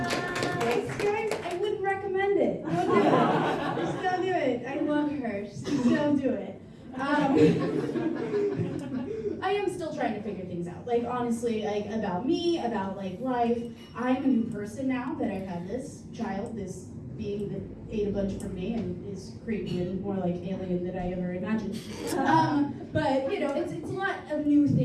Thanks guys. I wouldn't recommend it. Don't do it. Just don't do it. I love her. Just don't do it. I am still trying to figure things out. Like honestly, like about me, about like life. I'm a new person now that I've had this child, this being that ate a bunch from me and is creepy and more like alien than I ever imagined. But you know, it's a lot of new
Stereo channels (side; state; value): both; identical; correlation 1.00